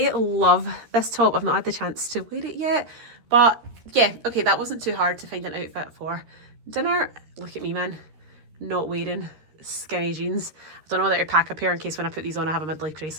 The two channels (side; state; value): left; late; 13 ms